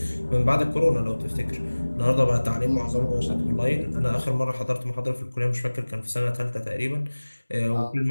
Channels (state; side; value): inverted; both; correlation -1.00